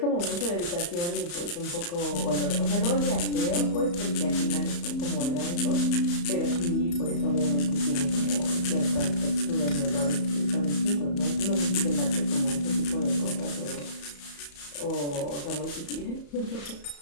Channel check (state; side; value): late; right; 34 ms